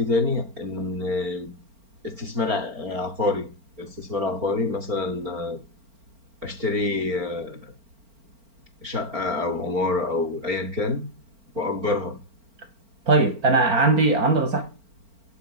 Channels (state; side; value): late; left; 4.4 ms